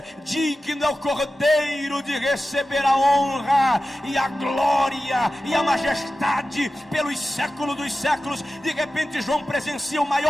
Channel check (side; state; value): both; normal; correlation 0.94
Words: digno é o Cordeiro de receber a honra e a glória e a majestade pelos séculos dos séculos. De repente João presencia o